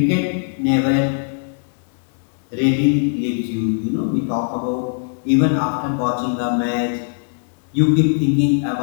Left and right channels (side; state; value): right; silent; digital silence